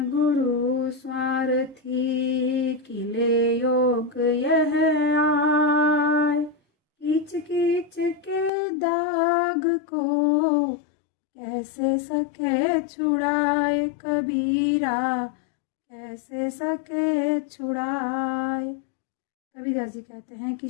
गुरु स्वार्थी, किले योग यह आय। कीच कीच के दाग को कैसे सके छुड़ाए कबीरा, कैसे सके छुड़ाए। कबीरदास जी कहते हैं कि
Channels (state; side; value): drops out; right; at 8.5 s